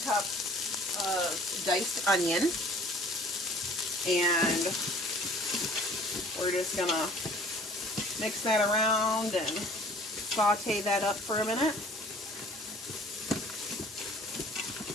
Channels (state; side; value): normal; both; correlation 0.52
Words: of diced onion, and we're just gonna mix that around and saute that up for a minute.